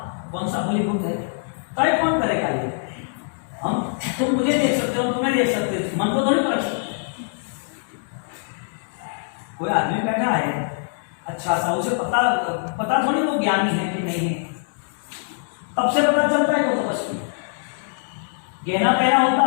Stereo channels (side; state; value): right; silent; digital silence